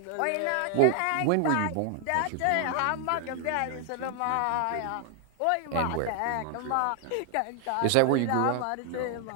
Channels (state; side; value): different; both; correlation 0.00